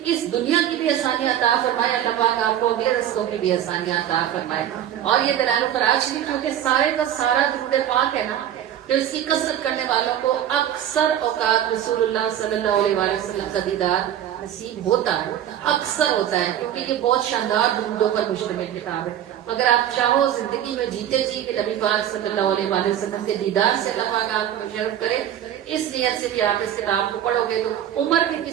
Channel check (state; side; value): quieter; left; 10.9 dB